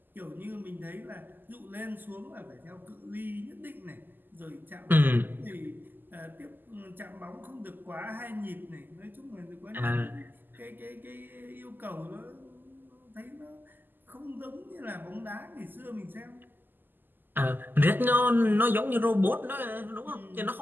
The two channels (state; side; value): late; left; 0.091 ms